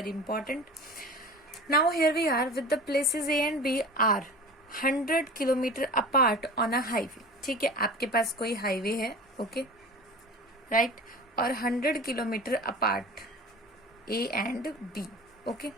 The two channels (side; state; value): both; normal; correlation 0.37